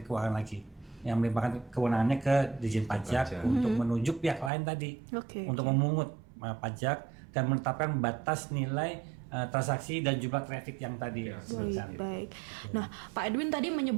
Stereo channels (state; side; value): drops out; left; at 4.5 s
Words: Keuangan lagi yang melimpahkan kewenangannya ke Ditjen Pajak untuk menunjuk pihak lain tadi untuk memungut pajak dan menetapkan batas nilai transaksi dan jumlah traffic yang tadi disebutkan. Baik. Nah, Pak Edwin tadi